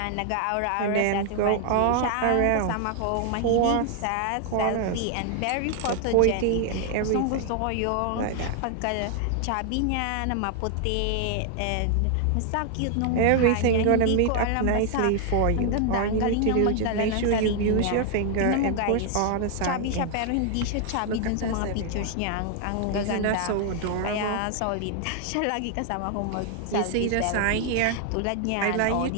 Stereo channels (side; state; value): both; different; correlation 0.00